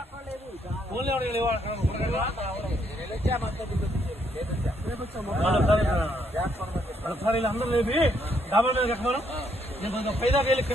అందరూ లేపి డాబాల మీద ఎక్కమను నేను కొంచెం పైదాకా వెళ్ళి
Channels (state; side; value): normal; both; correlation 0.72